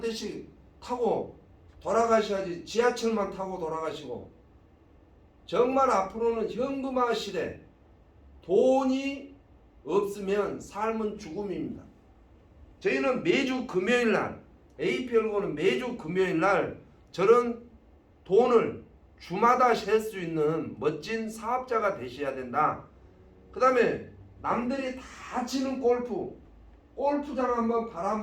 대씩 타고 돌아가셔야지 지하철만 타고 돌아가시고. 정말 앞으로는 현금화 시대, 돈이 없으면 삶은 죽음입니다. 저희는 매주 금요일날, APL고는 매주 금요일날 저런 돈을 주마다 셀 수 있는 멋진 사업자가 되셔야 된다. 그 다음에 남들이 다 치는 골프장 한번 발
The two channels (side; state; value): both; identical; correlation 1.00